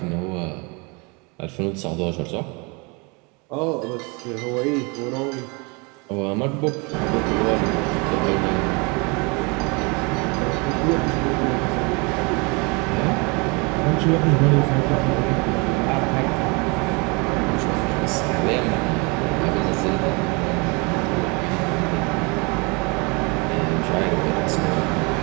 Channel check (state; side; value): quieter; left; 29.7 dB